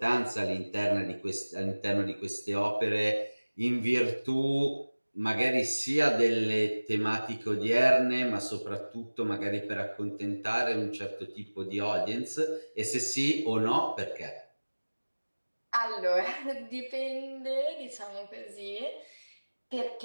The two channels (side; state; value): both; inverted; correlation -1.00